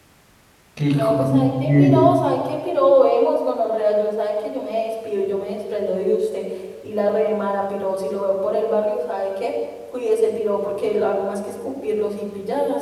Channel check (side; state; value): both; identical; correlation 1.00